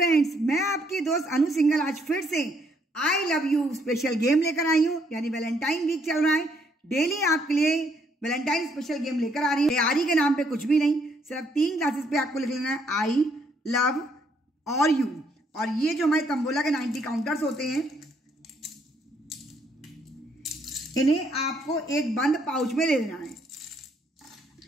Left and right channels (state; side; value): normal; both; correlation 0.70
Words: मैं आपकी दोस्त अनु सिंघल आज फिर से I love you special game लेकर आई हूँ। यानी वैलेंटाइन वीक चल रहा है, डेली आपके लिए वैलेंटाइन स्पेशल गेम लेकर आ रही है। तैयारी के नाम पे कुछ भी नहीं, सिर्फ 3 क्लासेस पे आपको लिख लेना है आई लव और यू। और ये जो हमारे तंबोला के 90 काउंटर्स होते हैं, इन्हें आपको एक बंद पाउच में ले लेना है।